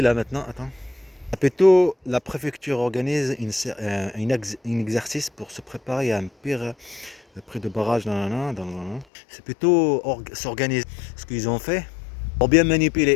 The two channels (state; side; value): drops out; right; at 9.1 s